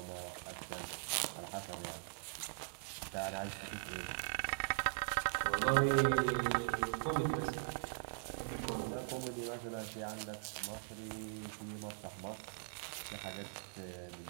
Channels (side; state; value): left; silent; digital silence